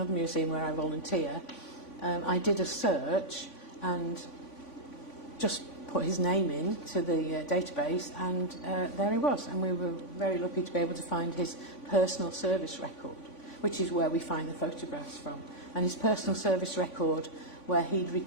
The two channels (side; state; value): right; late; 3.5 ms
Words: museum where I volunteer, I did a search and just put his name in to the database, and there he was. And we were very lucky to be able to find his personal service record, which is where we find the photographs from. And his personal service record, where he'd